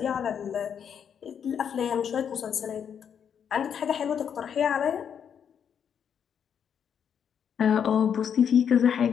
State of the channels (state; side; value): quieter; right; 7.9 dB